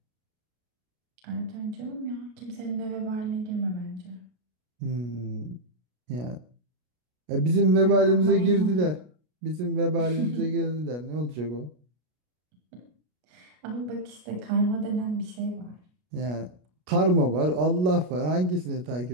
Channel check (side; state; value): left; late; 33 ms